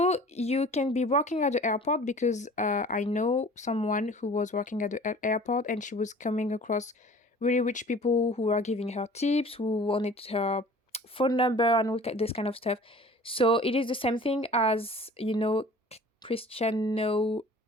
you can be working at the airport, because I know someone who was working at the airport, and she was coming across really rich people who are giving her tips, who wanted her phone number and all this kind of stuff. So it is the same thing as, Cristiano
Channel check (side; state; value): both; normal; correlation 0.46